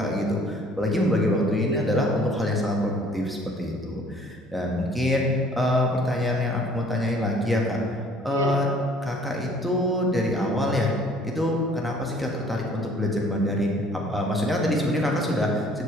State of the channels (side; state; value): both; normal; correlation 0.56